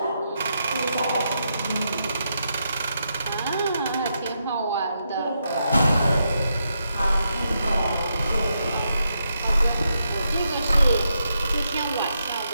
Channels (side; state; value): both; inverted; correlation -0.82